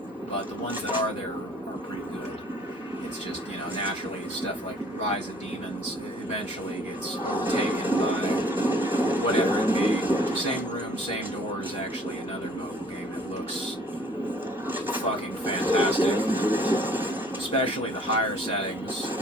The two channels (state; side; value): normal; both; correlation 0.56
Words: but the ones that are there are pretty good. It's just, you know, naturally stuff like Rise of Demons eventually gets taken by whatever it be. Same room, same door is actually another mobile game that looks fucking fantastic. Especially the higher settings,